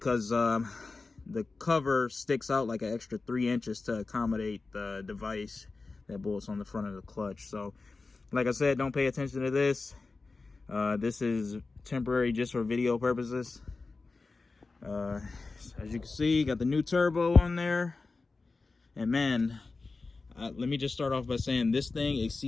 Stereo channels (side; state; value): right; quieter; 3.9 dB